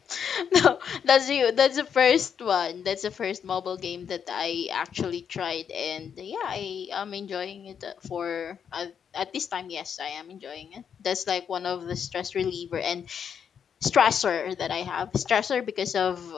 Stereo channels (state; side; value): quieter; right; 7.6 dB